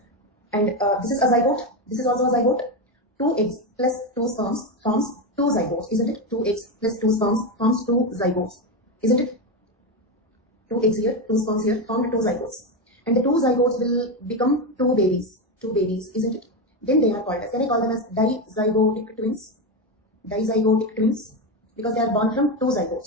and this is a zygote, this is also a zygote. 2 eggs plus 2 sperms forms 2 zygotes, isn't it? 2 eggs plus 2 sperms forms 2 zygotes, isn't it? 2 eggs here, 2 sperms here, formed 2 zygotes. And the 2 zygotes will become 2 babies, isn't it? Then they are called as, can I call them as dizygotic twins? Dizygotic twins, because they are born from 2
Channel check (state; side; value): normal; both; correlation 0.12